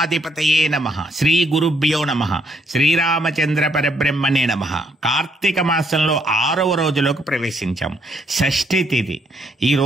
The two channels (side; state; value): both; normal; correlation 0.71